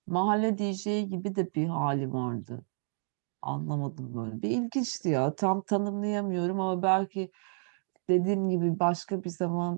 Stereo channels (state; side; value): silent; left; 58 dB below the other